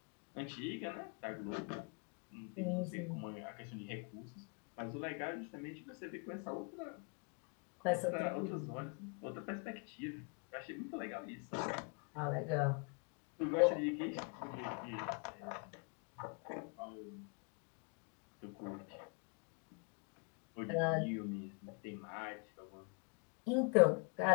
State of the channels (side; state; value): right; quieter; 35.5 dB